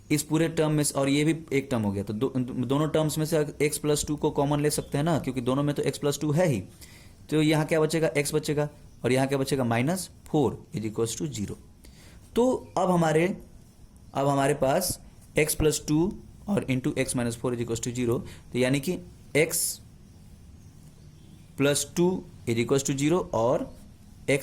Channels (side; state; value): both; identical; correlation 1.00